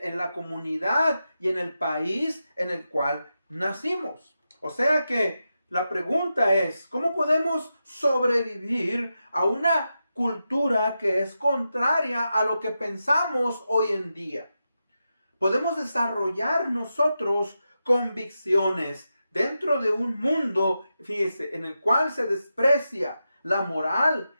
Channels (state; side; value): inverted; both; correlation -0.89